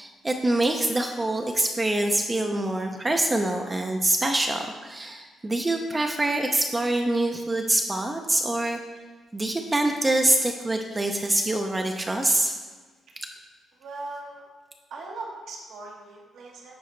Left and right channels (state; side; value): normal; both; correlation 0.93